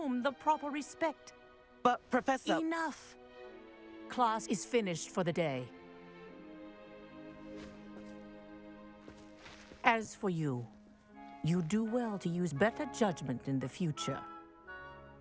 the proper respect. But, Professor... Enough. Class is finished for the day. As for you, you do well to use better judgment in the future.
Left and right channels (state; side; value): identical; both; correlation 1.00